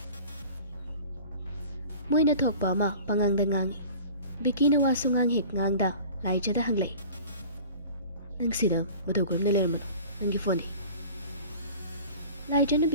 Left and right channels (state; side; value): inverted; both; correlation -0.42